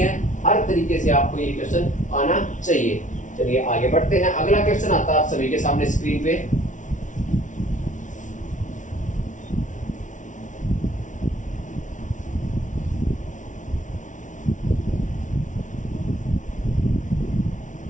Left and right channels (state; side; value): late; right; 0.37 ms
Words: हर तरीके से आपको ये क्वेश्चन आना चाहिए। चलिए आगे बढ़ते हैं। अगला क्वेश्चन आता है आप सभी के सामने स्क्रीन पे।